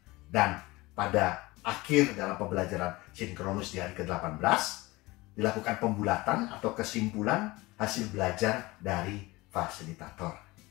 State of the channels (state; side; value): quieter; right; 21.3 dB